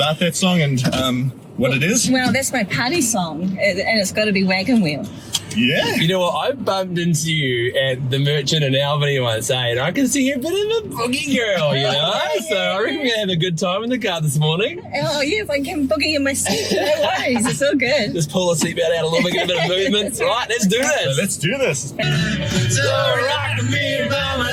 that song and what it is? Well, that's my party song, and it's got to be Wagon Wheel. Yeah. You know what? I bumped into you at the Merchant in Albany once, and I can see you're a bit of a boogie girl, you know? So I reckon we're going to have a good time in the car this morning. Oh, yeah, if I can boogie in my seat, no worries. It's all good. Just pull the seatbelt out a little bit, get a bit of movement. Right, let's do So this. let's do this. So rock me, mama,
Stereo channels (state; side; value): identical; both; correlation 1.00